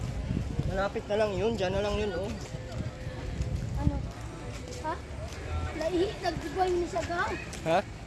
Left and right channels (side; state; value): both; identical; correlation 1.00